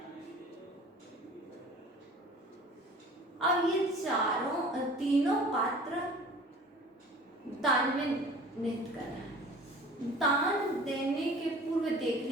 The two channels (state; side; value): normal; both; correlation 0.45